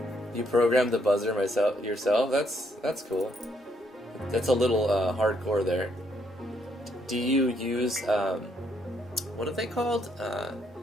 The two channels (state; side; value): normal; both; correlation 0.72